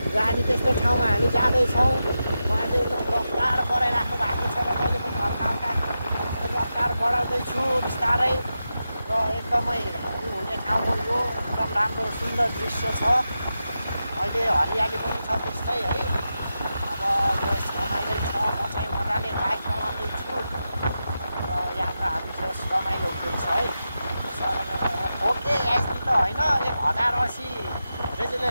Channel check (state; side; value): inverted; both; correlation -0.90